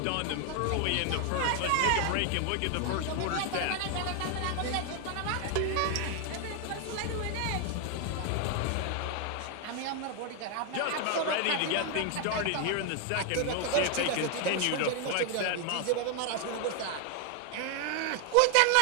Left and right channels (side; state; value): both; different; correlation 0.00